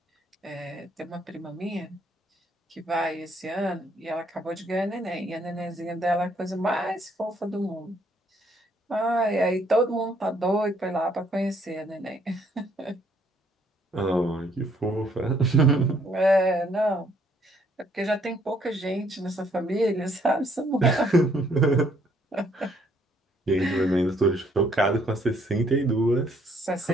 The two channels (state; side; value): normal; both; correlation 0.67